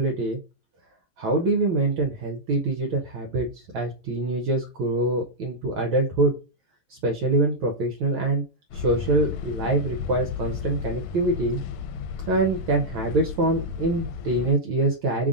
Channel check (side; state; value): both; normal; correlation -0.06